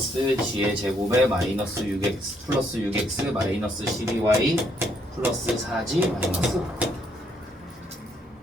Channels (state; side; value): normal; both; correlation 0.71